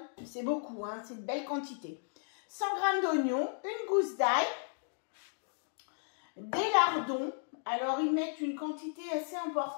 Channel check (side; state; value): right; silent; digital silence